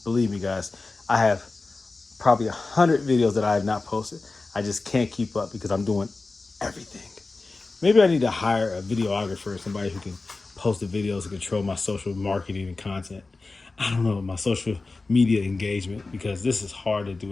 Believe me, guys, I have probably 100 videos that I have not posted. I just can't keep up because I'm doing everything. Maybe I need to hire a videographer, somebody who can post the videos and control my social marketing and content. I don't know, my social media engagement, because this is hard to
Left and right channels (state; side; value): quieter; right; 3.6 dB